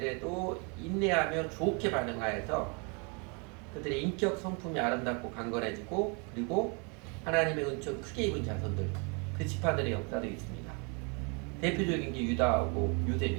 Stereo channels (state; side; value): quieter; left; 34.0 dB